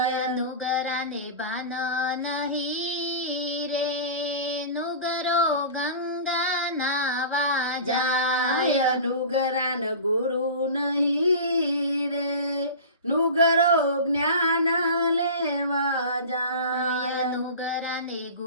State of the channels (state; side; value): inverted; both; correlation -0.34